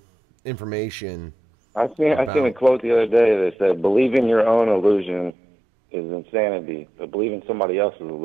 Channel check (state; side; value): drops out; left; at 5.3 s